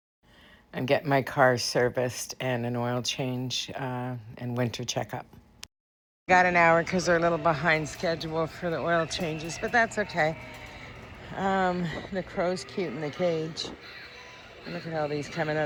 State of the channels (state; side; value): identical; both; correlation 1.00